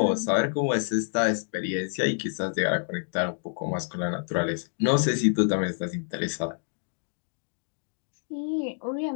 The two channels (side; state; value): right; silent; digital silence